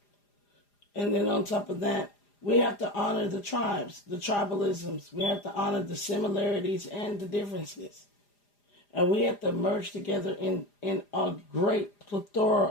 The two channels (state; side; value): late; right; 4.9 ms